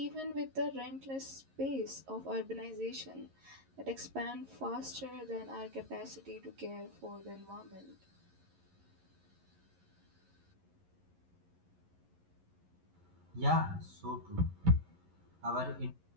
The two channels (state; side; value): late; left; 11 ms